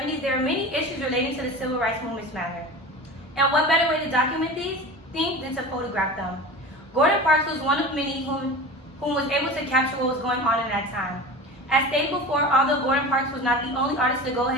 there were many issues relating to the civil rights movement's matter. And what better way to document these things than to photograph them? Gordon Parks was one of many whom was able to capture what was going on in that time. As stated before, although Gordon Parks was not the only artist to go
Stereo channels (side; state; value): both; normal; correlation 0.33